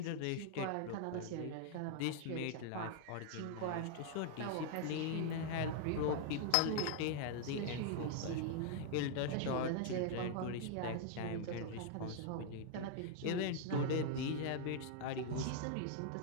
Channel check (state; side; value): different; both; correlation -0.01